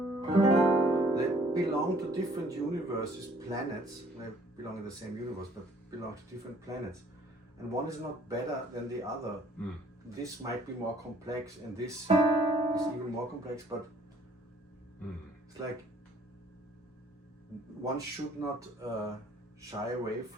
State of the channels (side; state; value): both; normal; correlation 0.58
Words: They belong to different universes, planets. They belong in the same universe, but belong to different planets. And one is not better than the other. This might be more complex, and this is even more complex, but it's like one should not shy away